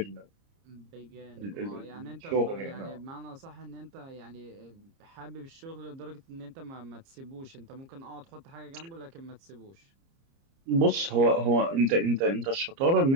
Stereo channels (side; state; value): left; late; 30 ms